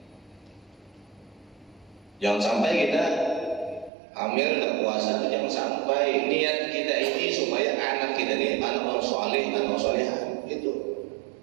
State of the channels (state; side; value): drops out; left; at 3.9 s